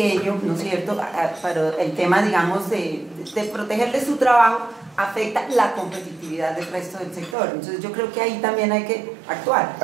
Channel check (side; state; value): left; drops out; at 7.4 s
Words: ¿no es cierto? Para el tema, digamos, de protegerle su trabajo, afecta la competitividad del resto del sector. Entonces yo creo que ahí también hay que